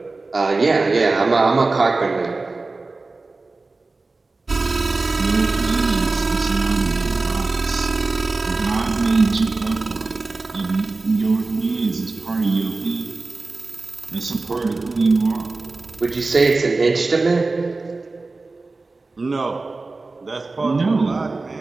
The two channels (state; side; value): quieter; left; 3.6 dB